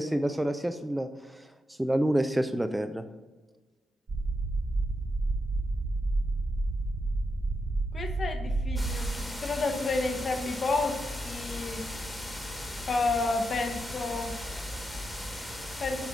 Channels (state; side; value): normal; both; correlation 0.86